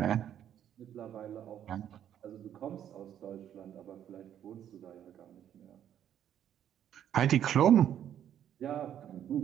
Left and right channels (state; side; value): quieter; left; 10.2 dB